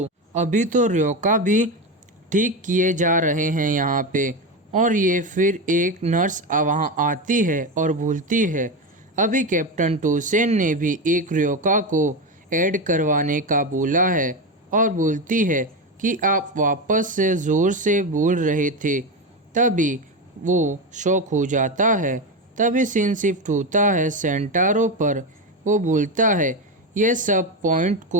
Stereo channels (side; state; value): both; normal; correlation 0.16